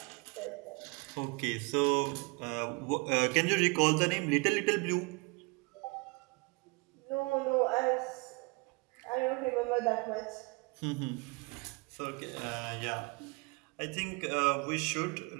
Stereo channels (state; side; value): quieter; left; 29.3 dB